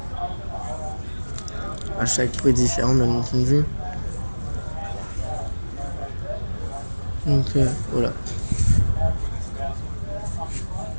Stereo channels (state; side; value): inverted; both; correlation -1.00